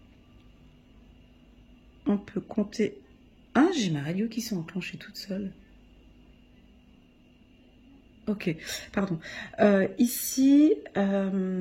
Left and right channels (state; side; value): identical; both; correlation 1.00